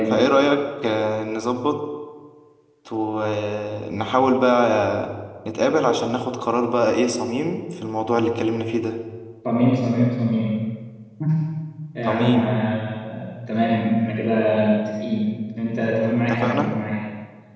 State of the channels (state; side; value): identical; both; correlation 1.00